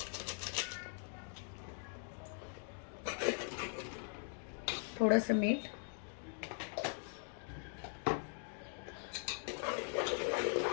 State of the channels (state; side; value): silent; right; 50 dB below the other